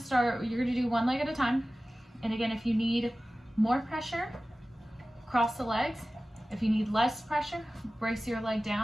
you're gonna do one leg at a time. And again, if you need more pressure, cross the legs. If you need less pressure, brace your leg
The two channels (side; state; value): both; normal; correlation 0.96